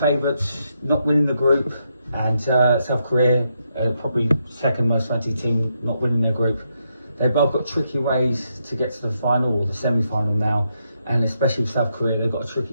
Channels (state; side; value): inverted; both; correlation -0.80